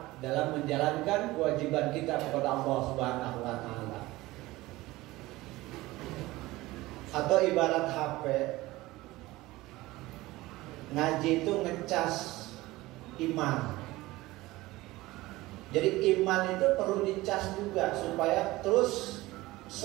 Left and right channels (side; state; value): left; quieter; 19.0 dB